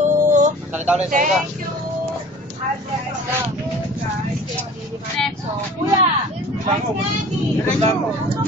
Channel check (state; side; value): normal; both; correlation 0.44